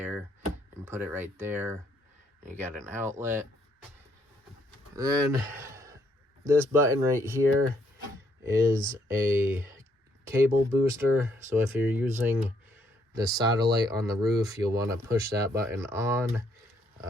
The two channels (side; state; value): both; normal; correlation 0.71